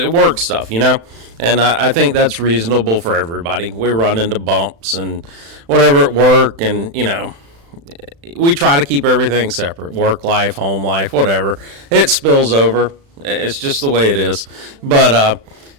Work stuff, you know? And I think that's reasonable for everybody. We run into bumps and whatever at work, and, you know, we try to keep everything separate. Work life, home life, whatever. It spills over. It's just the way it is. But,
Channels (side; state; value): left; late; 36 ms